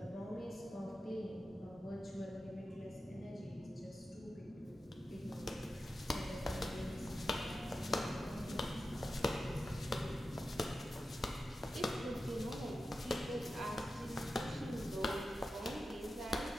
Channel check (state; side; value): normal; both; correlation 0.92